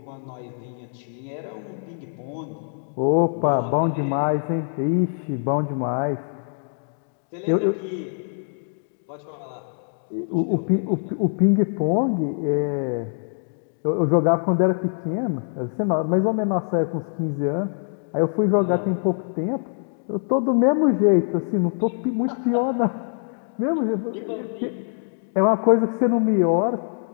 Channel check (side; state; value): right; silent; digital silence